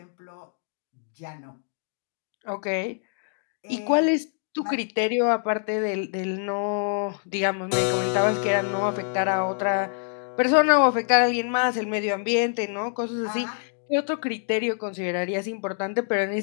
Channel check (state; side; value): silent; right; 61 dB below the other